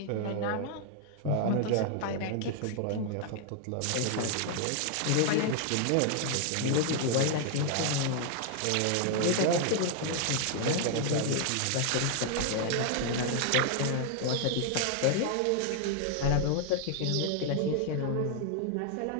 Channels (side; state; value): both; different; correlation 0.00